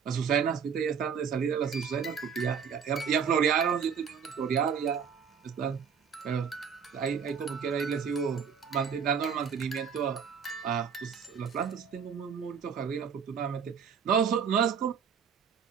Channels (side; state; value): left; quieter; 6.9 dB